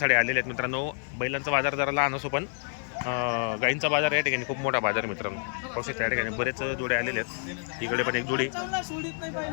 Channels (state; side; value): silent; right; 56 dB below the other